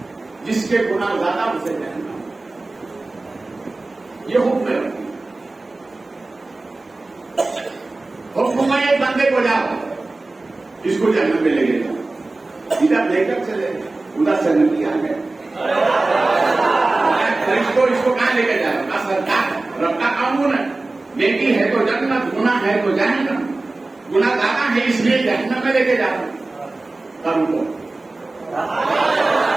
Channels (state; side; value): quieter; left; 3.2 dB